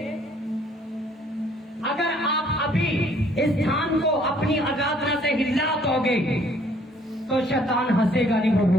अगर आप अभी इस स्थान को अपनी आराधना से हिला दोगे तो शैतान हंसेगा नहीं, वो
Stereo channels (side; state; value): both; normal; correlation 0.61